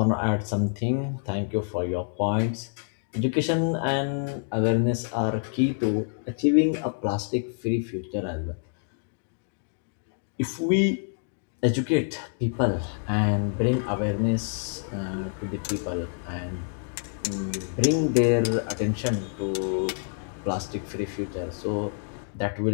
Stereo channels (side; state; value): right; silent; digital silence